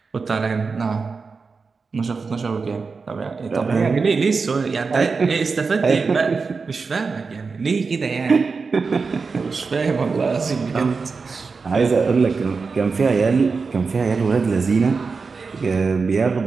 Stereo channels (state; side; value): quieter; left; 4.7 dB